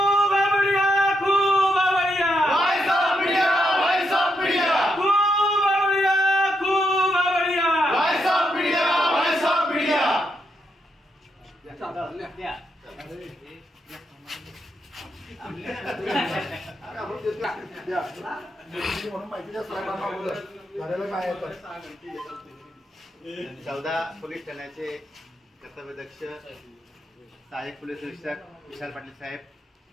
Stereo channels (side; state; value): both; normal; correlation 0.80